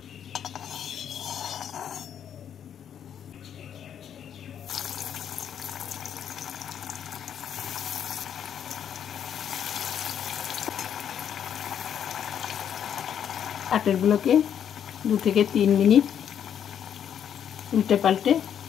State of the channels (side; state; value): right; quieter; 9.0 dB